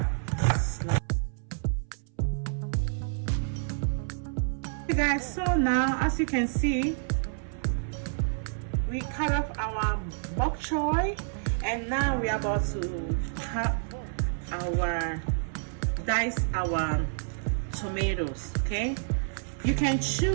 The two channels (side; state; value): left; silent; 59 dB below the other